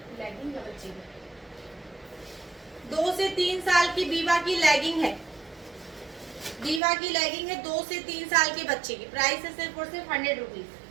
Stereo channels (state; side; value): drops out; left; at 6.8 s